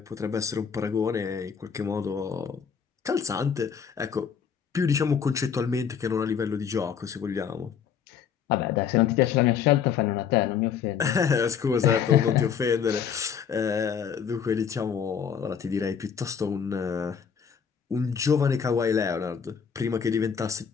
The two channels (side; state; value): right; quieter; 7.3 dB